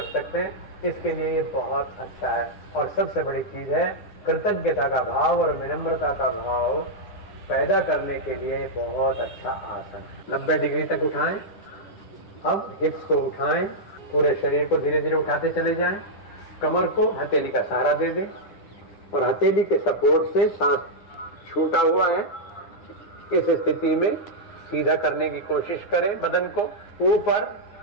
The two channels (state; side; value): late; right; 9.8 ms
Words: सकते हैं, इसके लिए ये बहुत अच्छा है। और सबसे बड़ी चीज है कृतज्ञता का भाव और विनम्रता का भाव पैदा करने के लिए बहुत अच्छा आसन। 90 डिग्री तक उठाएं। अब हिप्स को उठाएं, पूरे शरीर को धीरे धीरे उठाते चले जाएं। कमर को हथेली का सहारा दे दें और हथेली के सपोर्ट से सांस छूटा हुआ है, इस स्थिति में सीधा करने की कोशिश करें बदन को। ऊपर